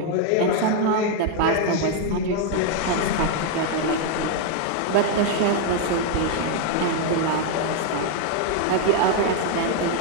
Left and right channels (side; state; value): both; different; correlation 0.01